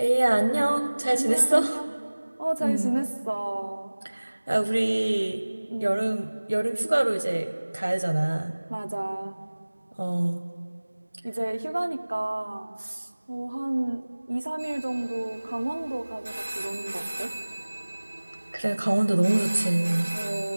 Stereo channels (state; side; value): inverted; both; correlation -1.00